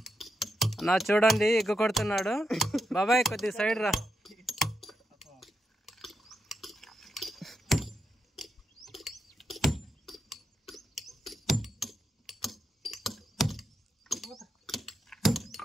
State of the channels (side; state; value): both; normal; correlation 0.85